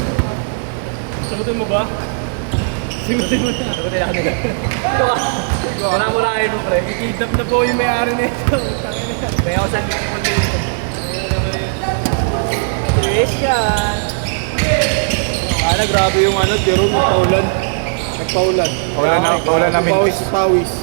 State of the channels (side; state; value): left; silent; 68 dB below the other